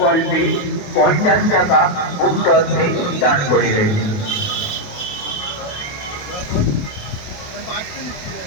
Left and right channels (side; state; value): right; late; 28 ms